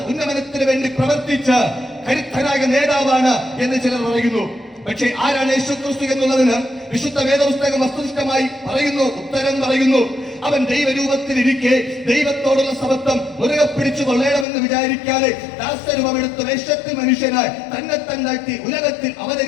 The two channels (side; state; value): right; drops out; at 14.5 s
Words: ഉന്നമനത്തിന് വേണ്ടി പ്രവർത്തിച്ച കരുത്തനായ നേതാവാണ് എന്ന് ചിലർ പറയുന്നു. പക്ഷേ ആരാണ് യേശു ക്രിസ്തു എന്നുള്ളതിന് വിശുദ്ധ വേദപുസ്തകം വസ്തുനിഷ്ഠമായി പറയുന്നു, ഉത്തരം പറയുന്നു. അവൻ ദൈവരൂപത്തിലിരിക്കെ ദൈവത്തോടുള്ള സമത്വം മുറുകെ പിടിച്ചു കൊള്ളണമെന്ന് വിചാരിക്കാതെ ദാസരൂപമെടുത്ത വേഷത്തിൽ മനുഷ്യനായി തന്നെ തന്നാട്ടി ഉലകത്തിൽ